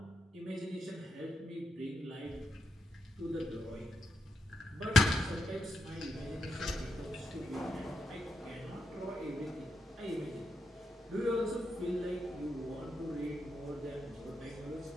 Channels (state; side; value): normal; both; correlation 0.83